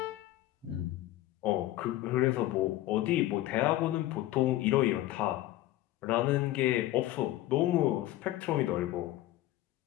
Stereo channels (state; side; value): quieter; right; 15.4 dB